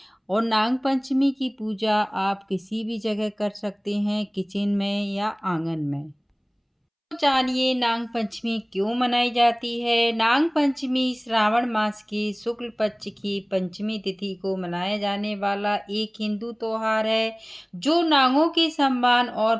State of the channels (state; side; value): identical; both; correlation 1.00